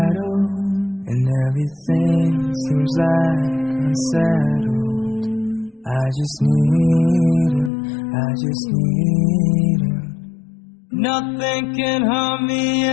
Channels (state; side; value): drops out; right; at 7.7 s